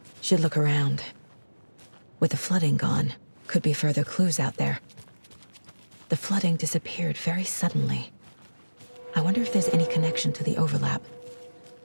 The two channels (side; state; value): both; inverted; correlation -1.00